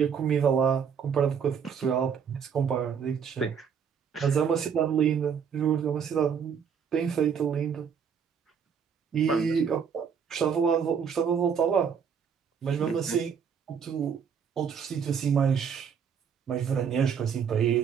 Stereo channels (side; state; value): left; quieter; 7.1 dB